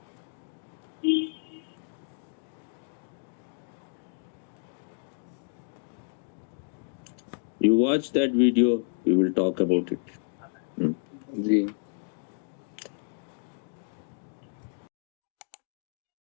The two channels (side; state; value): right; silent; 57 dB below the other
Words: You watch that video, we will talk about it. Ji.